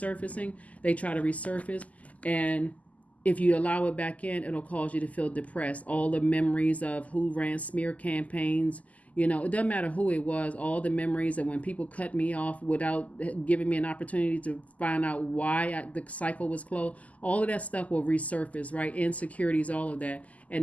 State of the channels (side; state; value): right; late; 0.073 ms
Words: they try to resurface. And If you allow it back in, it'll cause you to feel depressed. All the memories of who ran smear campaigns, it doesn't matter who it was, all the memories of when people cut me off without giving me an opportunity to find out why the cycle was closed, all of that stuff will resurface, right? Insecurities, all of that.